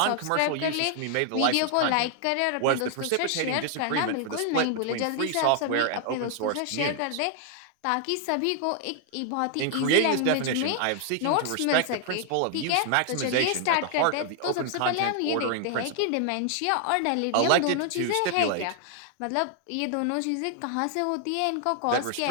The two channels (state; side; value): different; both; correlation 0.00